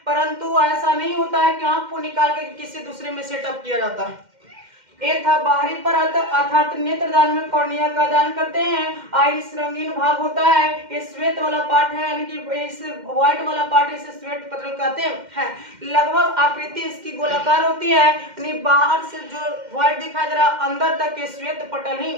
परंतु ऐसा नहीं होता है कि आंख को निकाल के किसी दूसरे में सेटअप किया जाता है। ये था बाहरी परत, अर्थात नेत्रदान में कॉर्निया का दान करते हैं। आइरिस रंगीन भाग होता है। ये श्वेत वाला पार्ट है, यानी कि इस व्हाइट वाला पार्ट इसे श्वेत पटल कहते हैं। लगभग आकृति इसकी गोलाकार होती है, यानी बाहर से जो व्हाइट दिखाई दे रहा है अंदर तक ये श्वेत पटल ही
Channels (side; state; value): left; late; 2.1 ms